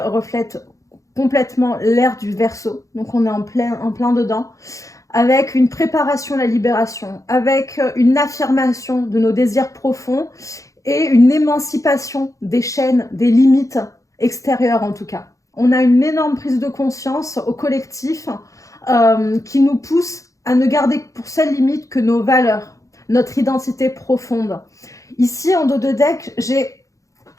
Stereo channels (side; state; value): right; late; 0.16 ms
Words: reflètent complètement l'ère du Verseau, donc on est en plein dedans, avec une préparation à la libération, avec une affirmation de nos désirs profonds et une émancipation des chaînes, des limites extérieures en tout cas. On a une énorme prise de conscience au collectif qui nous pousse à ne garder pour seule limite que nos valeurs, notre identité profonde. Ici, en dos de deck, j'ai